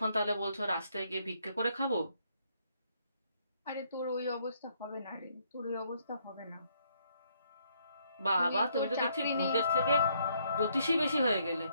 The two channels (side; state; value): both; inverted; correlation -0.70